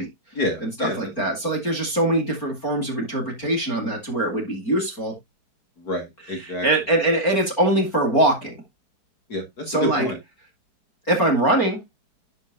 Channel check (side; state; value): right; late; 4.4 ms